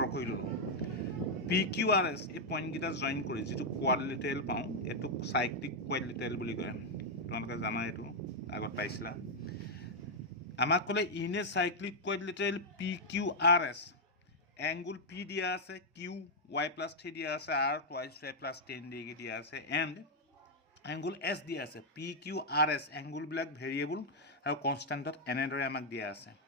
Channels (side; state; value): both; normal; correlation -0.03